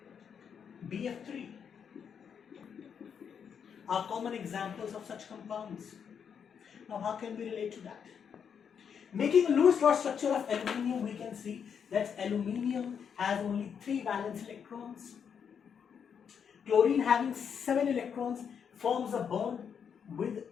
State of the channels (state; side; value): quieter; right; 7.3 dB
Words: BF3, are common examples of such compounds. Now, how can we relate to that? Making a Lewis dot structure of aluminium, we can see that aluminium has only 3 valence electrons, Chlorine having 7 electrons forms a bond with